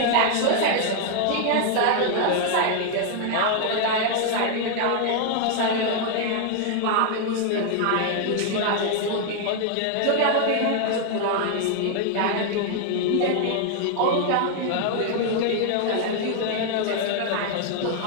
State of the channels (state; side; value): different; both; correlation 0.00